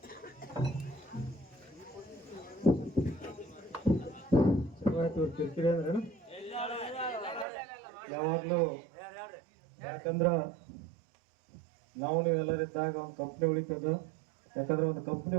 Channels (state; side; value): drops out; left; at 7.5 s